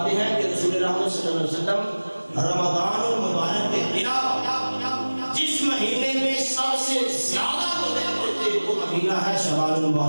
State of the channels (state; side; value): inverted; both; correlation -1.00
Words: ہیں کہ رسول رحمت صلی اللہ علیہ وسلم رمضان المبارک کے خلاف جس مہینے میں سب سے زیادہ روزے رکھتے تھے وہ مہینہ ہے شوال